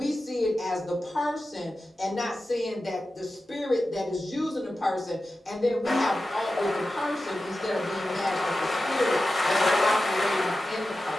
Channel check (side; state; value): both; normal; correlation 0.93